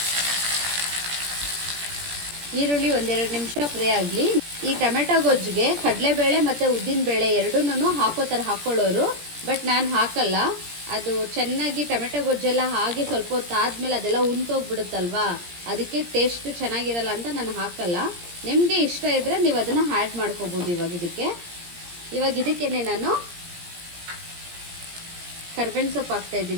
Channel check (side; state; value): left; late; 17 ms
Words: ಈರುಳ್ಳಿ 1-2 ನಿಮಿಷ ಫ್ರೈ ಆಗಲಿ. ಈ ಟೊಮೆಟೊ ಗೊಜ್ಜಿಗೆ ಕಡಲೆಬೇಳೆ ಮತ್ತು ಉದ್ದಿನಬೇಳೆ ಎರಡೂ ಹಾಕೊಳ್ಳೋರು, ಬಟ್ ನಾನು ಹಾಕಲ್ಲ. ಅದು ಚೆನ್ನಾಗಿ ಟೊಮೆಟೊ ಗೊಜ್ಜೆಲ್ಲ ಹಾಗೆ ಸ್ವಲ್ಪ ಹೊತ್ತು ಆದಮೇಲೆ ಅದೆಲ್ಲ ಉಂಟೋಗ್ಬಿಡುತ್ತಲ್ವಾ, ಅದಕ್ಕೆ ಟೇಸ್ಟ್ ಚೆನ್ನಾಗಿರಲ್ಲ ಅಂತ ನಾನು ಹಾಕಲ್ಲ. ನಿಮಗೆ ಇಷ್ಟ ಇದ್ದರೆ ನೀವು ಅದನ್ನು ಆ್ಯಡ್ ಮಾಡ್ಕೋಬೋದು. ಇವಾಗ ಇದಕ್ಕೇನೆ ನಾನು ಕರ್ಬೇವಿನ ಸೊಪ್ಪು